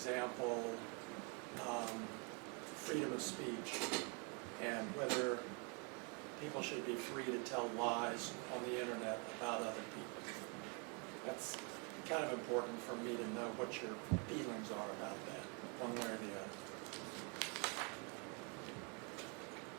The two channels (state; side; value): quieter; left; 35.1 dB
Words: freedom of speech and whether people should be free to tell lies on the internet about other people? That's kind of important for me to know what your feelings are about that, one way or the other.